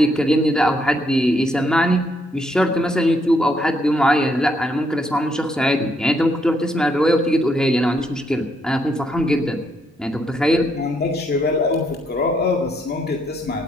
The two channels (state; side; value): normal; both; correlation 0.74